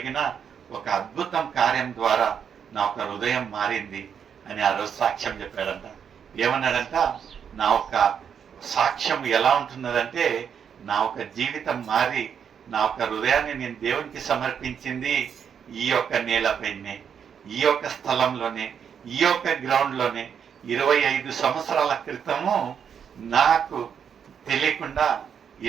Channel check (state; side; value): quieter; left; 7.6 dB